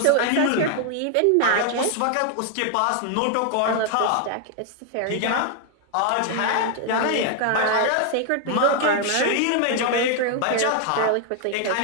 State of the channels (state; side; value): different; both; correlation 0.00